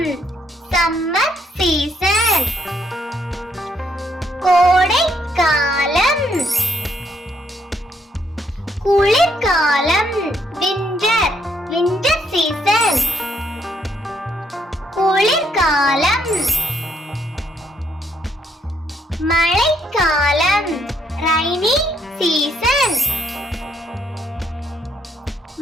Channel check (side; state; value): both; normal; correlation 0.72